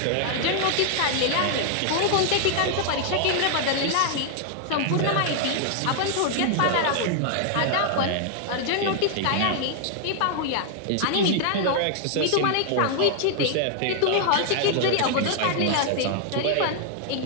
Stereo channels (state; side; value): different; both; correlation 0.00